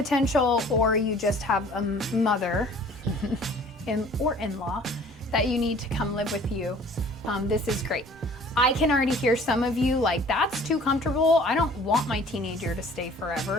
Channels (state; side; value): normal; both; correlation 0.51